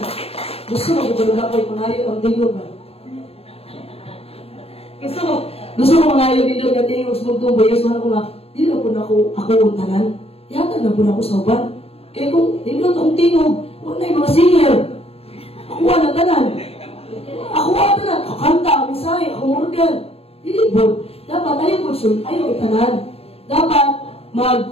Gusto mo kung ako'y pangayo ang tiyok ba? Gusto mo pangayo dito ang tiyok sa bugtong bayas. Mahal ko nga, hindi na po na ako untanan. Yatag na po na ako sa uban. Kaya kung hindi na itong tiyok, wala yung mga singer. Ako na tanan. Ako tanan. Ako kanta, ako misay, ako organ. Hindi po. Dapat ayaw itanan. Dapat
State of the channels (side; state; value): right; late; 0.29 ms